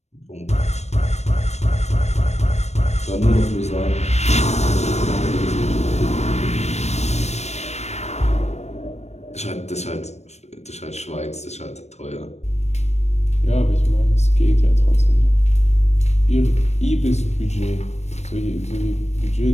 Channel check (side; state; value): right; late; 0.32 ms